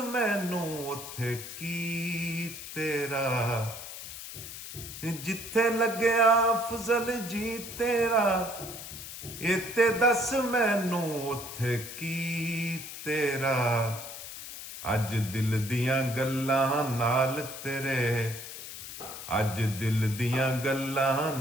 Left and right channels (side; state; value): left; noise; hiss, 10 dB below the sound